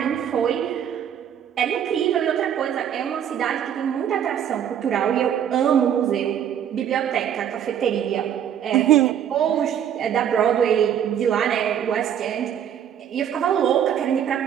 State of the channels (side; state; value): left; quieter; 9.4 dB